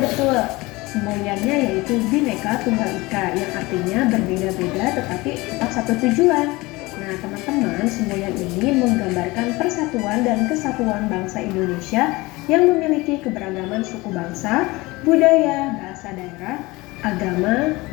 semboyannya yaitu Bhinneka Tunggal Ika yang artinya berbeda-beda tetapi tetap satu tujuan. Nah teman-teman, semboyan ini menggambarkan persatuan dan kesatuan bangsa Indonesia yang memiliki keberagaman suku bangsa, budaya, bahasa daerah, agama,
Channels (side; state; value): right; quieter; 22.0 dB